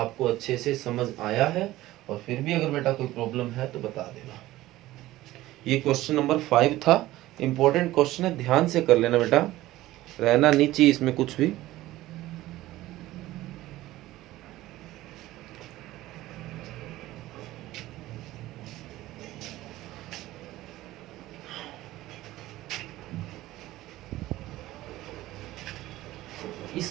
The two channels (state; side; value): quieter; left; 16.4 dB